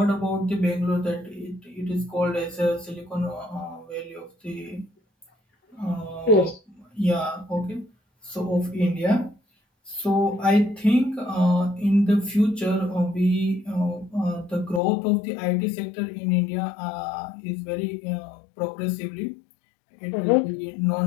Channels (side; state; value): right; drops out; at 14.8 s